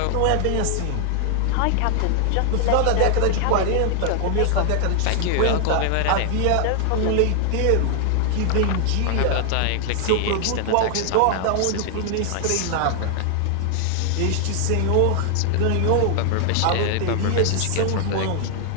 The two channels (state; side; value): different; both; correlation 0.00